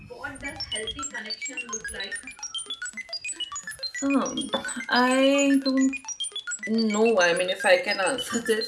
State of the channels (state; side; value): identical; both; correlation 1.00